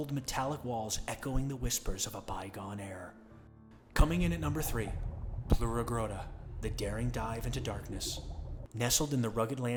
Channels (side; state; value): both; identical; correlation 1.00